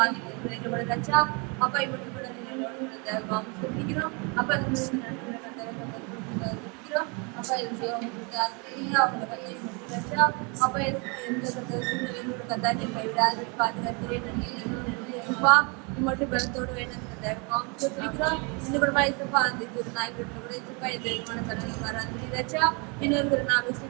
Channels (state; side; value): quieter; left; 32.3 dB